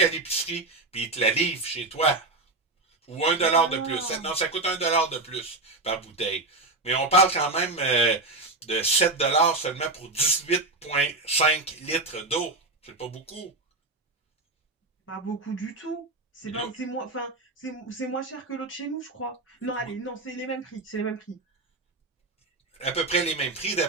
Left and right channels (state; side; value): quieter; left; 3.1 dB